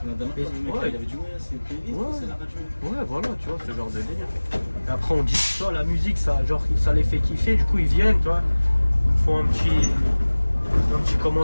la dernière Et- fois, le mec, ouais. il avait dit, ouais, c'est une playlist, Ouais. c'est la radio. Ouais, voilà, tu vois, ce genre de délire. Et après, on dit, tu vois, la musique, ça, genre, ça les fait kiffer, du coup, ils viennent, tu vois, ils font un petit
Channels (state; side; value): inverted; both; correlation -1.00